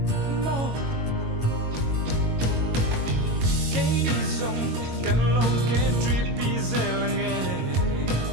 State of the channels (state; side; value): late; left; 22 ms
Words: mò cái đi dòng cần lâu cái trip đi dễ là nghe